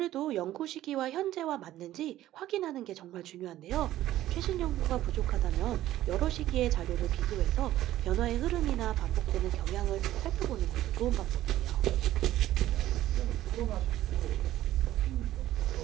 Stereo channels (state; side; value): quieter; left; 14.0 dB